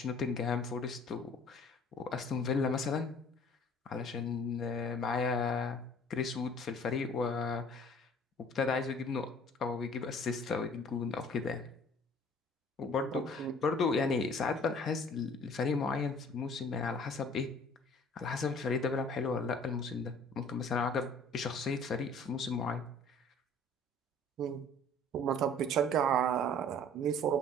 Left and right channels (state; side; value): normal; both; correlation 0.51